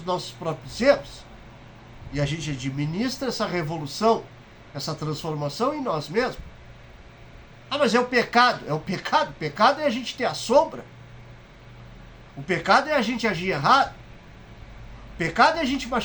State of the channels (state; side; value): identical; both; correlation 1.00